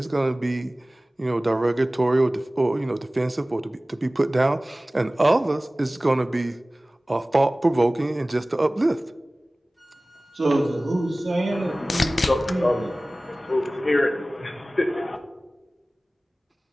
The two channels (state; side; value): normal; both; correlation 0.98